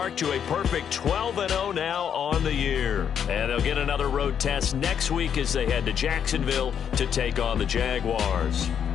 to a perfect 12-0 now on the year. And they'll get another road test next week as they head to Jacksonville to take on the Jaguars.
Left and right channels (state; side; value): quieter; right; 8.2 dB